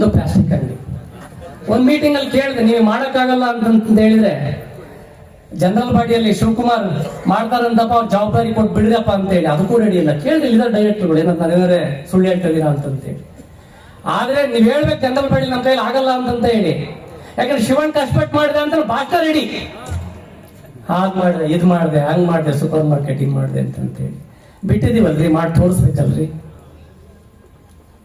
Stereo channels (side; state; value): both; identical; correlation 1.00